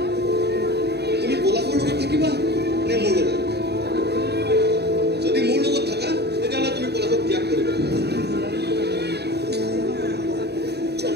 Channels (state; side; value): late; left; 0.48 ms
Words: তুমি পলাশৰ লগত থাকিবা নে মোৰ লগত যদি মোৰ লগত থাকা তেতিয়াহ'লে তুমি পলাশক ত্যাগ কৰিবা